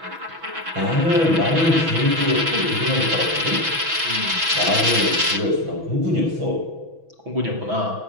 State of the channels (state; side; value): late; left; 6.1 ms